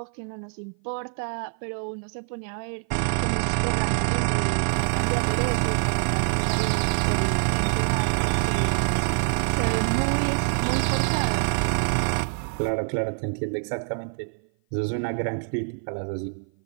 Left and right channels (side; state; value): left; silent; 56 dB below the other